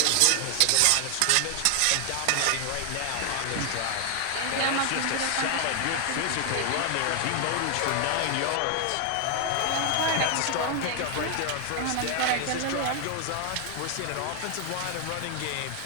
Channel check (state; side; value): different; both; correlation 0.00